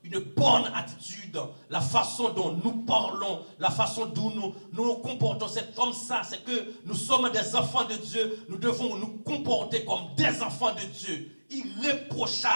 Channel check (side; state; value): both; inverted; correlation -1.00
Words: une bonne attitude, la façon dont nous parlons, la façon dont nous nous comportons, c'est comme ça, c'est que nous sommes des enfants de Dieu, nous devons nous comporter comme des enfants de Dieu,